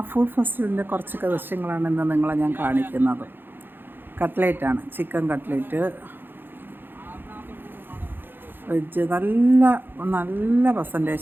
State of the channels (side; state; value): left; late; 0.098 ms